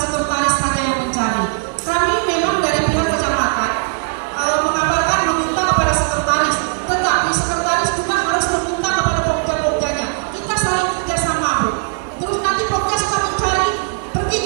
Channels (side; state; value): left; silent; 58 dB below the other